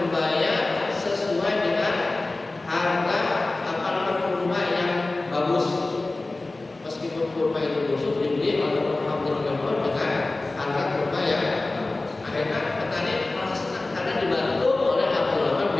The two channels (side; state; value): right; quieter; 3.1 dB